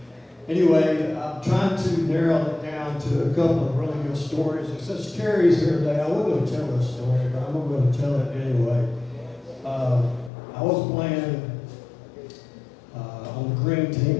anyway, I'm trying to narrow it down to a couple of really good stories. And since Terry's here today, I wasn't going to tell this story, but I'm going to tell it anyway. I was playing on the green team.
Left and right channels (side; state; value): right; drops out; at 10.3 s